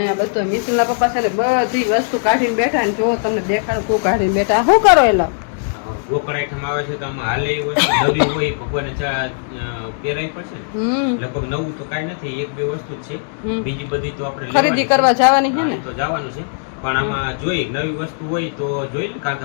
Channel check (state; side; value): silent; right; digital silence